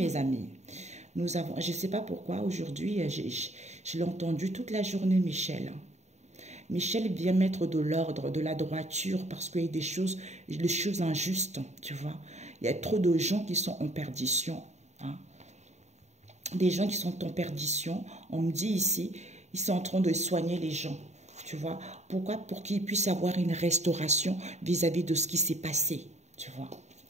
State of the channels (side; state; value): left; late; 0.33 ms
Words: amis. Nous avons, je ne sais pas pourquoi, aujourd'hui, je l'ai entendu toute la journée, Michel. Michel vient mettre de l'ordre, de la droiture, parce qu'il y a des choses injustes, tu vois. Il y a trop de gens qui sont en perdition. Hein. Des gens qui sont en perdition, on me dit ici, ils sont en train de soigner les gens. Tu vois, pourquoi? Pour qu'ils puissent avoir une restauration vis-à-vis de ce qui s'est passé, tu vois.